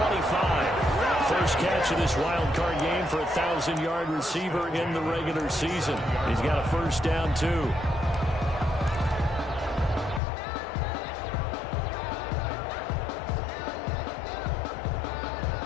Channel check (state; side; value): drops out; right; at 10.2 s